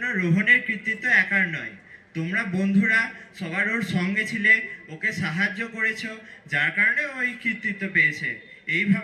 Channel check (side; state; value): both; identical; correlation 1.00